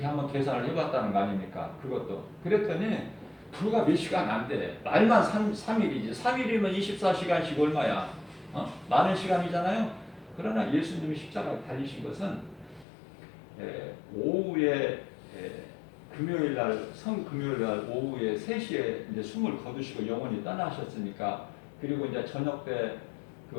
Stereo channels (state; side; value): drops out; right; at 12.9 s